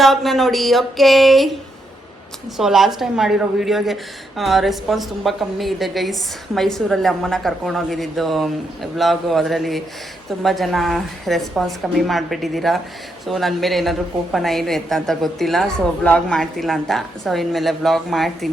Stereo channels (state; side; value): normal; both; correlation 0.80